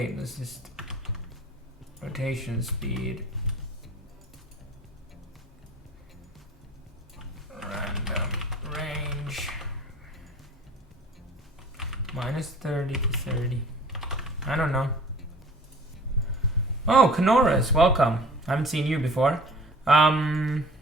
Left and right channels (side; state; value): both; normal; correlation 0.47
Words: this is rotation speed. Random range. Minus 30 to 30. I don't know. Oh, Kanoras, welcome. I haven't seen you before. First